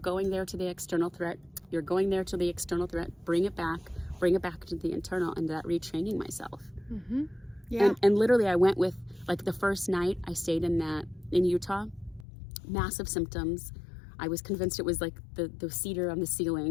there to the external threat. You're going there to the external threat. Bring it back to the internal, and that retraining myself. Yeah. And literally I went with, like, the first night I stayed in Utah, massive symptoms. I was convinced it was like the cedar on the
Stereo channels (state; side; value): drops out; right; at 12.2 s